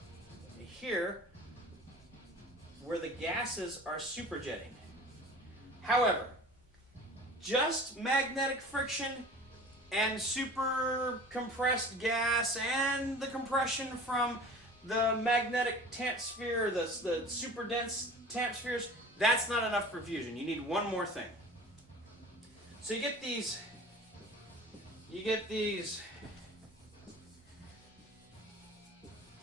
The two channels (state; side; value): normal; both; correlation 0.41